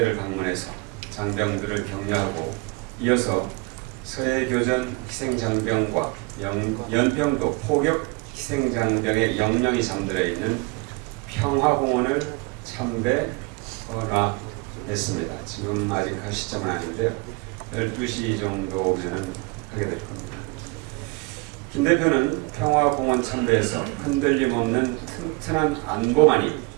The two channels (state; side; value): quieter; left; 26.8 dB